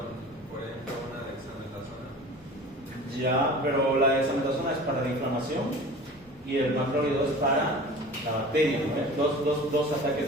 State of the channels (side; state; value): both; normal; correlation 0.39